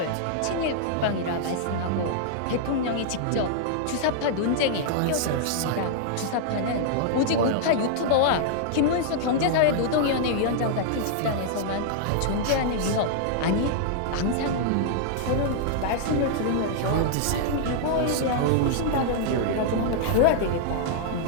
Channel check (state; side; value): different; both; correlation -0.01